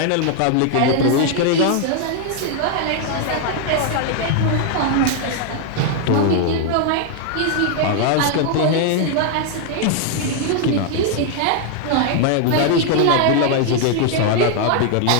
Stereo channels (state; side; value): different; both; correlation 0.00